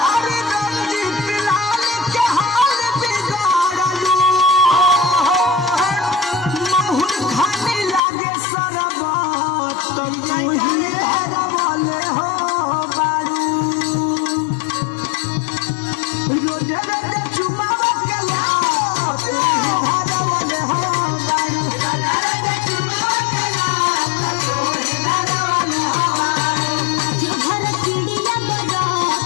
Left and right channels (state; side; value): drops out; right; at 8.0 s